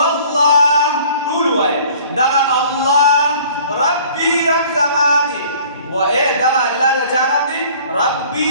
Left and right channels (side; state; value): both; inverted; correlation -0.51